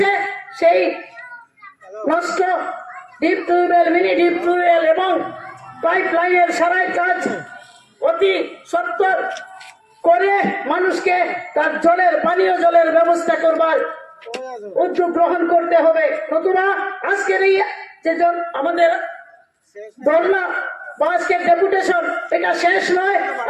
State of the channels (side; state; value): both; identical; correlation 1.00